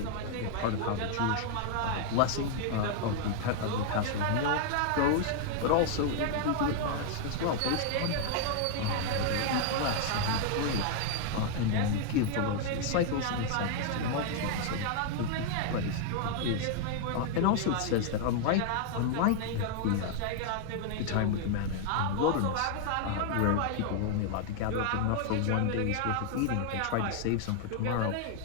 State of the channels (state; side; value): different; both; correlation 0.00